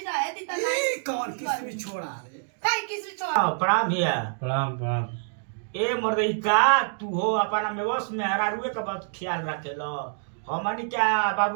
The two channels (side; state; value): left; silent; digital silence